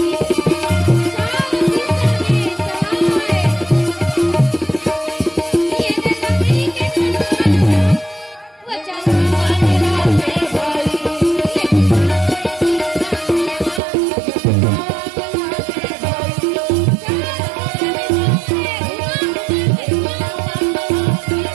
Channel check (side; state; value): left; drops out; at 13.8 s